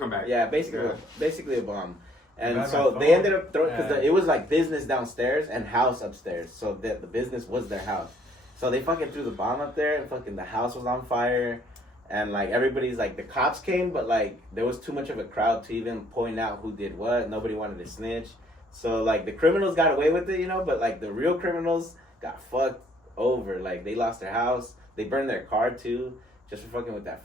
back. Yeah, basically, Yeah. basically a bomb. And Got so my they phone. ended up throwing because Yeah. it was like business downstairs and house upstairs. So the business was their house. So they fucking threw the bomb up there, and fucking the house was on fire. And like everybody's like the cops came, but like there was too much of a crowd to even point out who did what. Nobody wanted to snitch. So like the criminals got away with it, you know, but like the real criminals got fucked over. Like they lost their house, they burned their car too, just for fucking with that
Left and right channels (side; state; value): both; normal; correlation 0.63